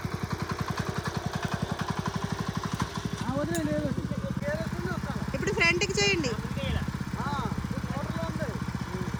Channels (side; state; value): both; identical; correlation 1.00